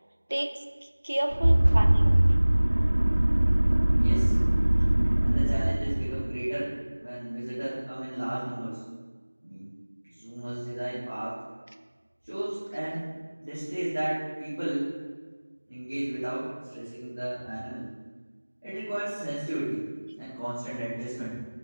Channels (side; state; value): both; inverted; correlation -1.00